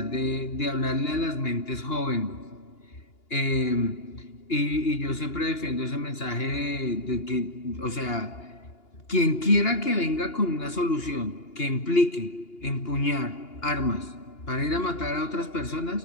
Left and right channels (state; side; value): late; right; 2.9 ms